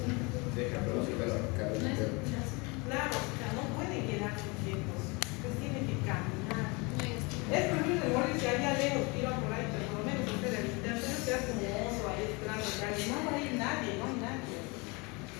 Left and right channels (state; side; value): quieter; right; 27.9 dB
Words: Claro, o sea, no pueden quedarse quietos, pues tienen que caminar. Es preferible morirse allá lejos, tira por ahí, pero por lo menos hacer el internet, se hace como oso ahí esperando que alguien. No va a ir nadie, no hay nadie.